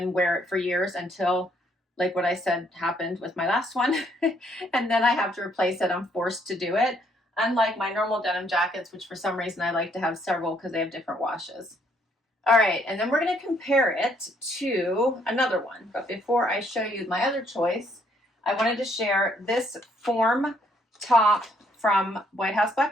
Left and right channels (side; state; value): both; normal; correlation 0.69